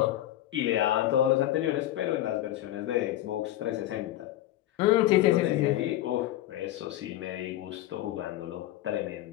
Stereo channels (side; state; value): right; quieter; 14.1 dB